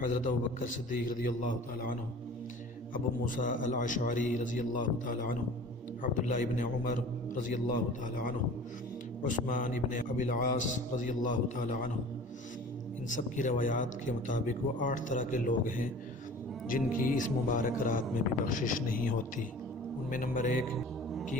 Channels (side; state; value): both; normal; correlation 0.43